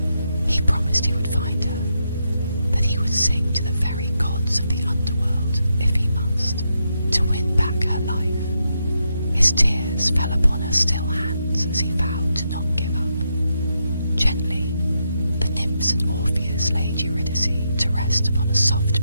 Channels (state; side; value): inverted; both; correlation -0.82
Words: He promised he would find her, that he would sing to the very gods of the Underworld if he must, to win back her life. His tears fell upon her still hands as he vowed to not give up. Gently, the nymphs and Orpheus laid Eurydice to rest upon a